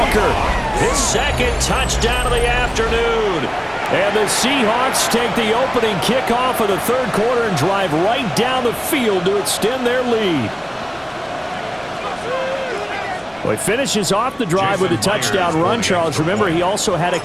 His 2nd touchdown of the afternoon. And the Seahawks take the opening kickoff of the 3rd quarter and drive right down the field to extend their lead. Well, he finishes off the drive with a touchdown run, Charles. Remember, he also had a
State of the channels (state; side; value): identical; both; correlation 1.00